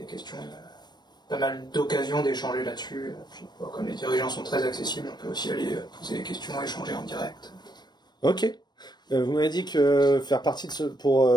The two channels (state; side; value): late; right; 0.21 ms